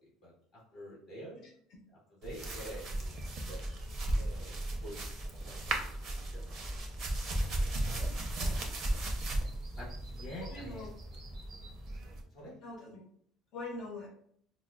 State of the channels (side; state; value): both; normal; correlation 0.85